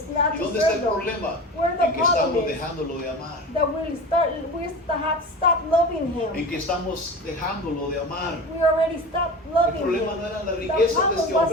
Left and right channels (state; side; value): normal; both; correlation 0.31